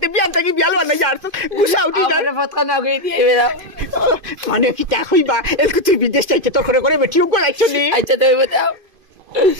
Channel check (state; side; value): late; left; 2.5 ms